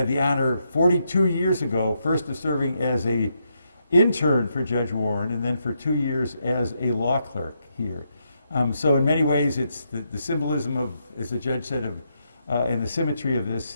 the honor 42 years ago, first of serving as an intern for Judge Warren and then for 2 years as a law clerk here. So in many ways, it's the symbolism of, as the judge said, and the symmetry of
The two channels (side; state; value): both; inverted; correlation -0.79